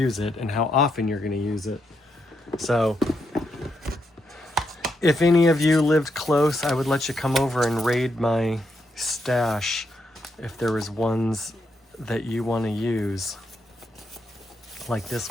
it, and how often you're going to use it. So if any of you lived close, I would let you come over and raid my stash if there was ones that you want to use, like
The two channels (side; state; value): both; normal; correlation 0.80